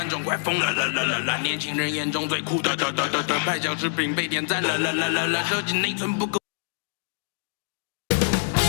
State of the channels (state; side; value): silent; right; digital silence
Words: 众快疯了，年轻人眼中最酷的，拍小视频被点赞了，手机内存不够。